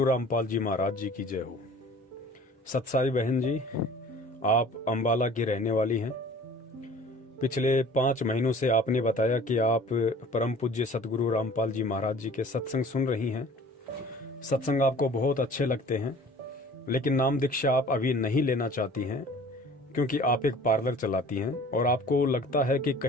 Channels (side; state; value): both; normal; correlation 0.47